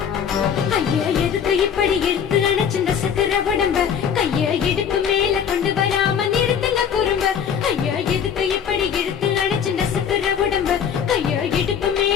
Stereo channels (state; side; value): quieter; right; 7.8 dB